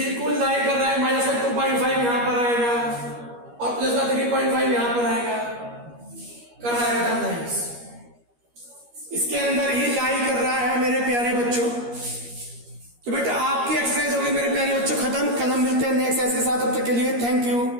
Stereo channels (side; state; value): left; late; 13 ms